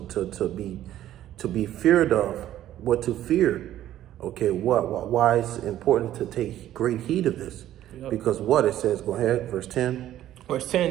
be feared of, what to fear. Okay, why it's important to take great heed of this? Yep. Because what it says, go ahead, verse 10. Verse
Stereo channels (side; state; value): left; quieter; 12.7 dB